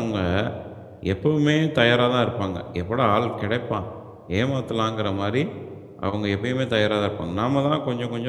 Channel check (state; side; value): identical; both; correlation 1.00